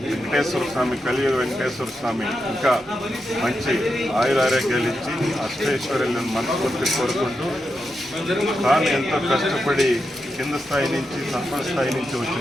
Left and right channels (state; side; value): normal; both; correlation 0.87